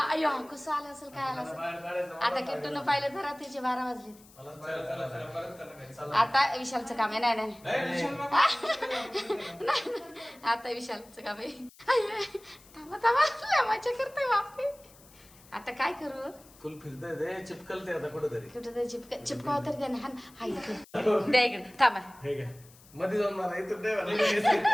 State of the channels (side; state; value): left; noise; hiss, 25 dB below the sound